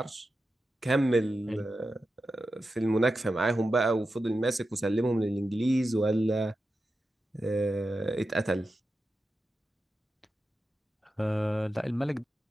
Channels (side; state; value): both; normal; correlation 0.91